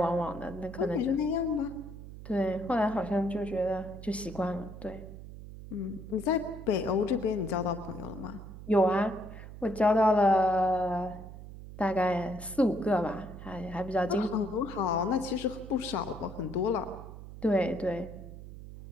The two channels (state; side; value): noise; right; hum, 13 dB below the sound